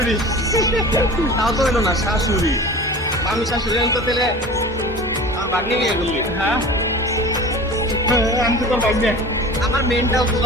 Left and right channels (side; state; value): both; normal; correlation 0.38